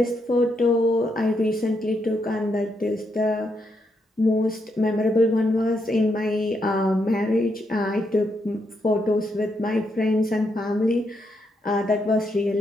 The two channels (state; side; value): normal; both; correlation 0.79